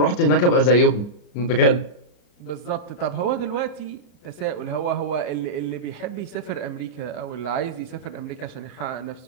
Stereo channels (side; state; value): right; late; 34 ms